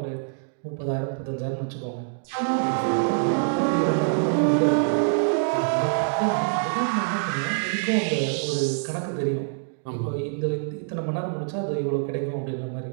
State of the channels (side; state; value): left; silent; digital silence